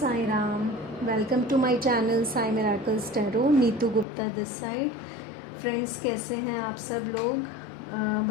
Ram. Welcome to my channel Sai Miracles Tarot. Neetu Gupta this side. Friends, कैसे हैं आप सब लोग?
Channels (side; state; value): right; drops out; at 4.0 s